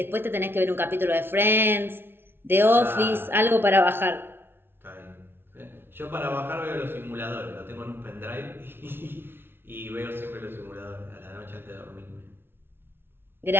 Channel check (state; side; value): late; left; 0.11 ms